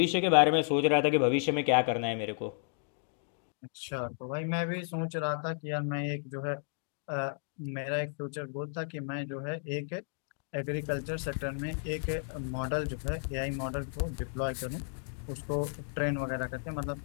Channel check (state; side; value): silent; right; digital silence